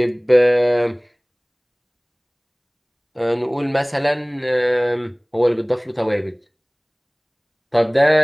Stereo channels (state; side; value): identical; both; correlation 1.00